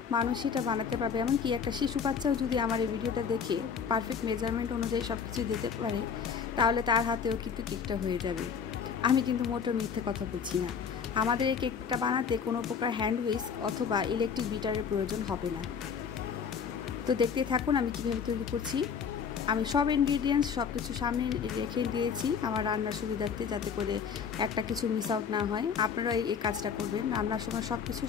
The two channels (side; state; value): right; quieter; 6.6 dB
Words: মানুষ এটা বানাতে পারবে। এমনকি একটা শিশু বাচ্চাও যদি আমার এই ভিডিওটা দেখে পারফেক্ট মেজারমেন্ট অনুযায়ী সব কিছু দিতে পারে, তাহলে তার হাতেও কিন্তু কেকটা হয়ে যাবে। আমি কিন্তু মোটেও মিথ্যে কথা বলছি না। আমাদের এই কেকটা বানাতে কোনো প্রকার হ্যান্ড হুইস্ক অথবা ইলেকট্রিক বিটারের প্রয়োজন হবে না। তো দেখতেই থাকুন আমি কীভাবে তৈরি করছি। আমি সব ইনগ্রিডিয়েন্টস সব কিছু সামনে রেখে দিয়েছি আমার রান্নার সুবিধার্থে, যাতে করে একটা কিছু মিস আউট না হয়। আপনারা এই কাজটা করবেন, রান্নার সময় সব কিছু